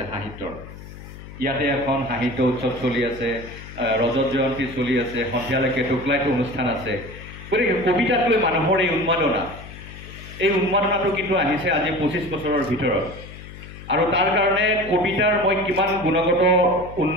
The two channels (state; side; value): noise; left; hum, 15 dB below the sound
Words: সাহিত্যৰ। ইয়াতে এখন সাহিত্য উৎসৱ চলি আছে, ৰজত জয়ন্তী চলি আছে, সন্ধিয়ালৈকে টোকলাইটো অনুষ্ঠান আছে। গতিকে কবিতাক লৈ মানুহৰ এই উন্মাদনাটো কিন্তু আহিছে আজি 25 বছৰৰ ভিতৰত। আৰু তাৰ কাৰণে কবিতাৰ মই কিমান গুণগত